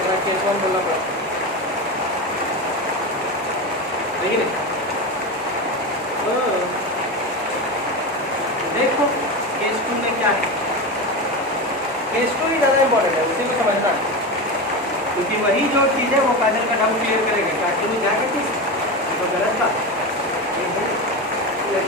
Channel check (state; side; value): normal; both; correlation 0.20